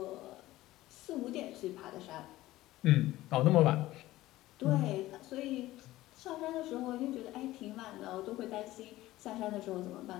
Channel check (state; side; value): quieter; right; 16.5 dB